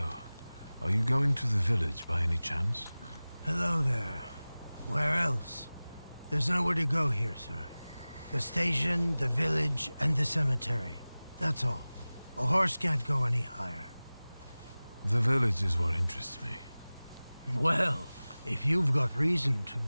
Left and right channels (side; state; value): both; inverted; correlation -0.98